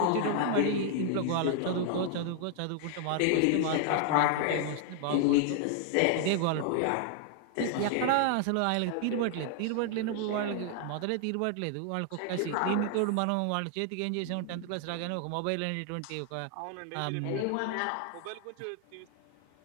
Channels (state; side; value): different; both; correlation 0.00